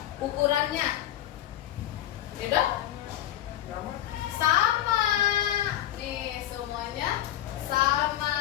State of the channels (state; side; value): quieter; right; 12.8 dB